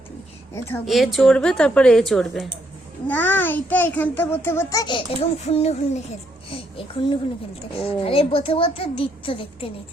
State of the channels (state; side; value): normal; both; correlation 0.74